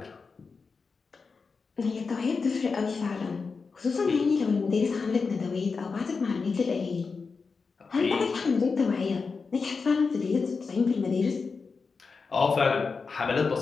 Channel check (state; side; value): quieter; right; 4.8 dB